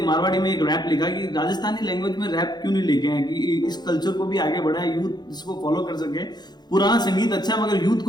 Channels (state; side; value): late; right; 0.20 ms